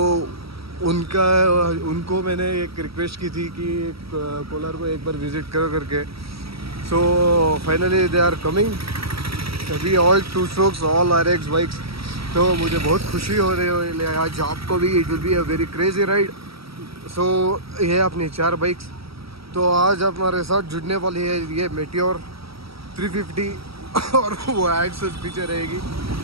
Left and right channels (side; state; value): left; late; 0.76 ms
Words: उनको मैंने एक रिक्वेस्ट की थी कि कोलार को एक बार विज़िट करो करके। So finally they are coming, सभी all 2 strokes, all RX bikes. तो मुझे बहुत खुशी हो रही है आज आपको भी। It will be a very crazy ride. So ये अपनी 4 बाइक्स तो आज हमारे साथ जुड़ने वाली है। ये मेटियोर 350 और वो Rxz पीछे रहेगी।